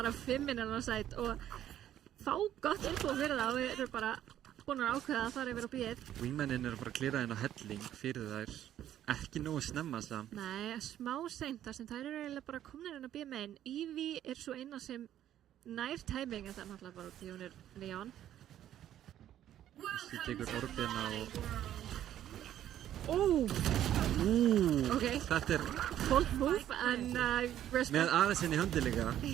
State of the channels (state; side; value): quieter; left; 11.5 dB